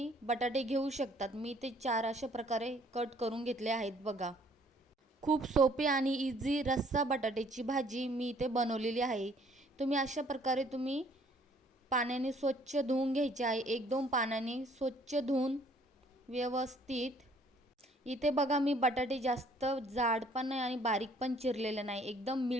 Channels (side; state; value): both; normal; correlation 0.60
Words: बटाटे घेऊ शकतात. मी ते 4 अशा प्रकारे कट करून घेतले आहेत बघा. खूप सोपी आणि इझी रस्सा बटाट्याची भाजी मी इथे बनवलेली आहे. तुम्ही अशा प्रकारे पाण्याने स्वच्छ धुवून घ्यायचे आहे. 1-2 पाण्याने स्वच्छ धुवून व्यवस्थित. इथे बघा मी बटाटे जास्त जाड पण नाही आणि बारीक पण चिरलेले नाही. एकदम